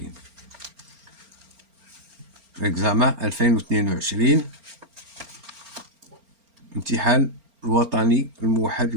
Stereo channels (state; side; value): late; left; 4.4 ms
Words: اكزامان 2022 امتحان الوطني الموحد